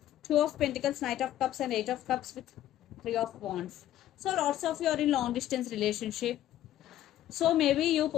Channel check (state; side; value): quieter; right; 12.7 dB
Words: Two of Pentacles, Knight of Cups and Eight of Cups with Three of Wands. So lots of you are in long distance relationship. So maybe you